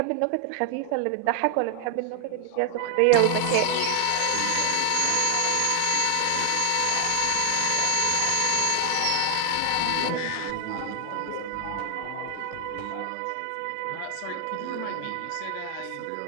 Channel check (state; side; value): different; both; correlation 0.00